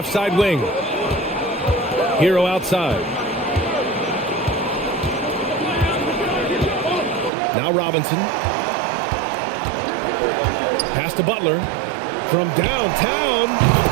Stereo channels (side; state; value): left; drops out; at 7.3 s